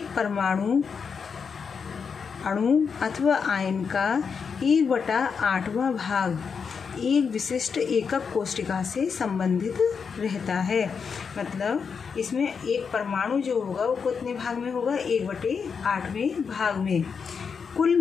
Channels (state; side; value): quieter; right; 6.0 dB